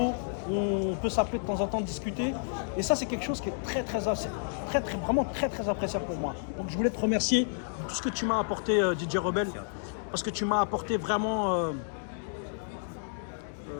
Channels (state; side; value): silent; right; digital silence